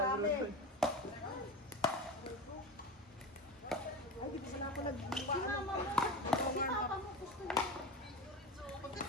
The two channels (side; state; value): both; normal; correlation 0.27